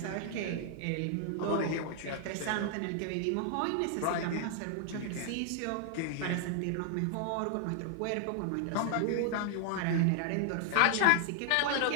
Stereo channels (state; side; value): different; both; correlation 0.00